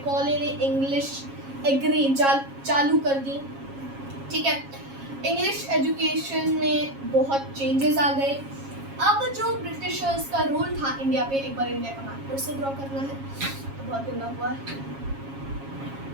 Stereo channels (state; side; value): late; left; 7.3 ms